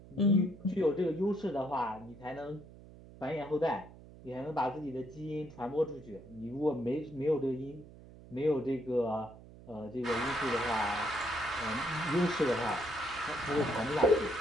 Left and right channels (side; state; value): right; noise; hum, 19 dB below the sound